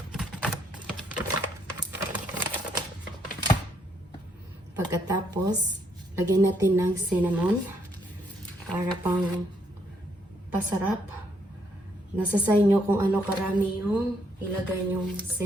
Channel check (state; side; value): normal; both; correlation 0.71